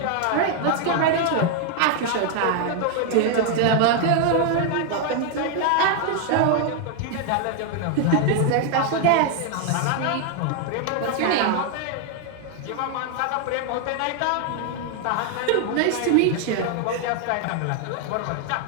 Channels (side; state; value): both; different; correlation 0.00